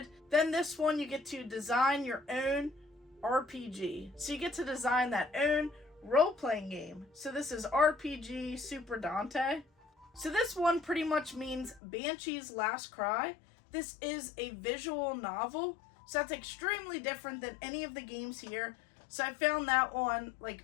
Then this one, you get to design your own RPG. So you get to design that own role-playing game. So this is RPG Super Dante. So this one pretty much means Banshee's Last Cry. This is a visual novel. So that's extremely different than any of the games here. So I found that one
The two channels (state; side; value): drops out; right; at 11.8 s